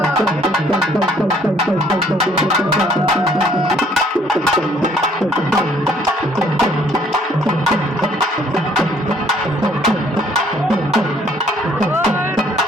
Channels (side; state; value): both; normal; correlation 0.62